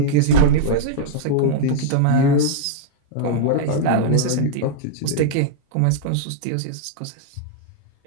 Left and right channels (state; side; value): different; both; correlation -0.01